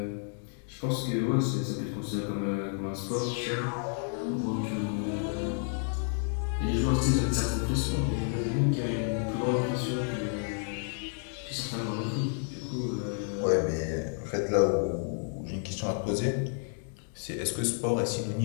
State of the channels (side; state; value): right; silent; 57 dB below the other